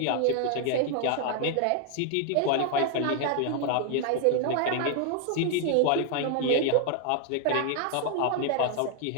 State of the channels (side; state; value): both; different; correlation 0.00